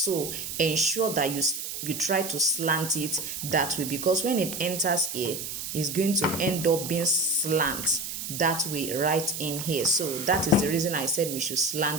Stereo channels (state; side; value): noise; right; hiss, 6 dB below the sound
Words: ensure that you try to slant it that way, because when it enters A, it's going to end up being slant that way right in here. So that is the reason I said we should